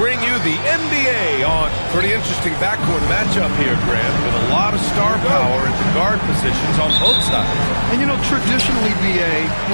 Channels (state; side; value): inverted; both; correlation -1.00